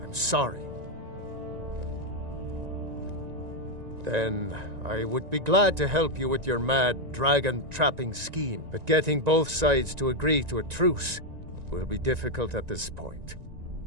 I'm sorry. Then I would be glad to help you with your mad dragon-trapping scheme, but getting both sides to agree to a truce will be difficult at this point.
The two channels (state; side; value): late; left; 1.9 ms